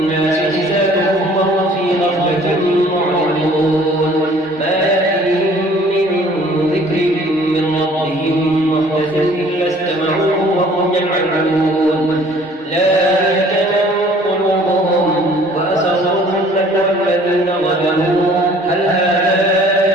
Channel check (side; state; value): both; normal; correlation 0.54